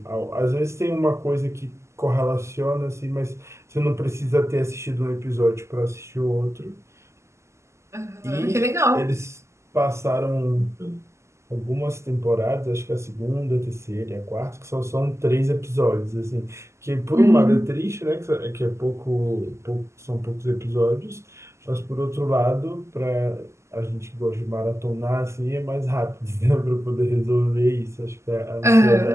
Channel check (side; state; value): left; late; 0.13 ms